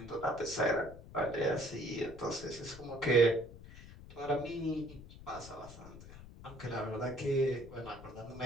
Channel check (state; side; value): noise; left; rumble, 16 dB below the sound